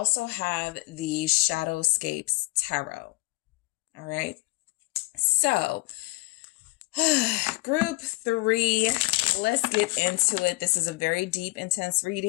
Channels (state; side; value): quieter; right; 22.8 dB